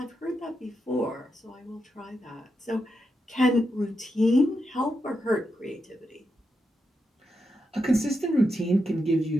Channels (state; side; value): normal; both; correlation 0.85